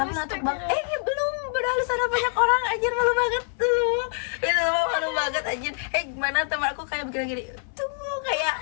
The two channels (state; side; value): silent; right; 60 dB below the other